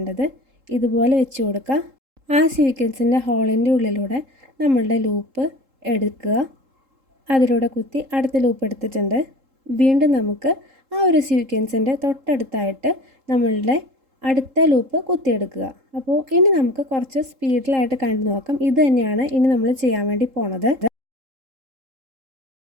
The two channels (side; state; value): left; late; 3.7 ms